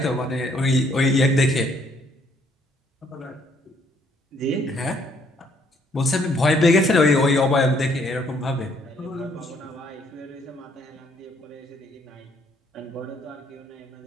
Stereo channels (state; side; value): normal; both; correlation 0.66